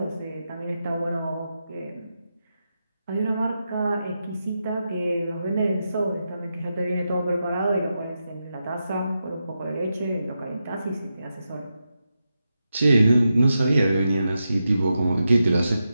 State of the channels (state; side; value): inverted; both; correlation -0.88